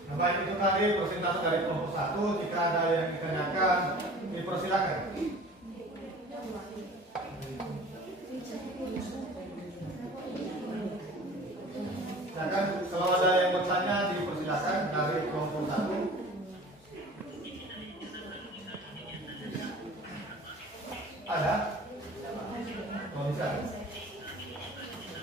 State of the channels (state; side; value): normal; both; correlation 0.43